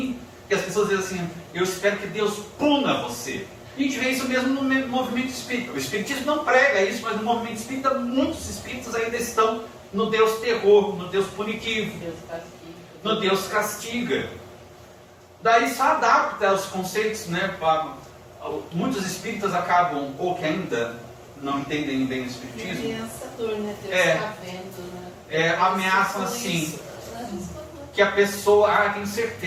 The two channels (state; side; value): identical; both; correlation 1.00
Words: que as pessoas dizem assim: eu espero que Deus puna você. E a gente vê isso mesmo no movimento espírita. O espiritismo não prega isso, mas no movimento espírita muitos espíritos ainda estão no Deus terror, no Deus punitivo, no Deus castiga. Daí só adapta os conceitos, né? Muitos espíritas acabam, ou que ainda não entendem bem o espiritismo, Ameaçador, né? Deus está vendo, né? Ameaçam assim, que a pessoa, tenho